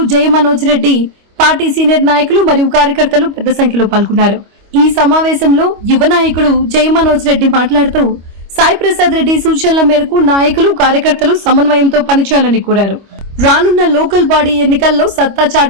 జయ మనోజ్ రెడ్డి, పార్టీ సీనియర్ నాయకులు మరియు కార్యకర్తలు పెద్ద సంఖ్యలో పాల్గొన్నారు. ఈ సమావేశంలో యువ నాయకుడు జయ మనోజ్ రెడ్డి మాట్లాడుతూ సాయి ప్రసాద్ రెడ్డి సూచనల మేరకు నాయకులు, కార్యకర్తలు సమన్వయంతో పనిచేయాలని కోరారు. రానున్న లోకల్ బాడీ ఎన్నికల్లో సత్తా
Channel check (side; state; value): left; late; 25 ms